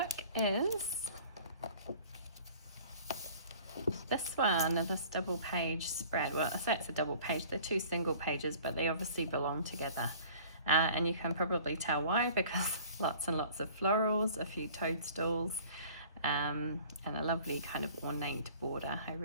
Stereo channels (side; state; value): both; inverted; correlation -0.48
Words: is this one, this double page spread. Well, I say it's a double page. They're 2 single pages, but they obviously belong together. And you can probably tell why, because lots and lots of florals, a few toadstools, and a lovely kind of ornate border. I